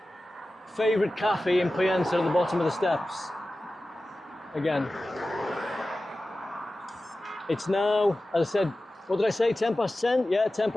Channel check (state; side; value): normal; both; correlation 0.95